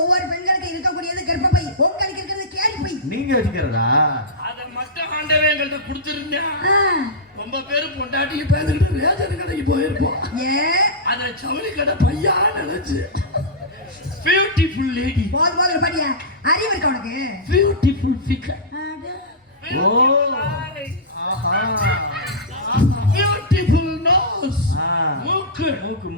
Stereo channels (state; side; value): normal; both; correlation -0.14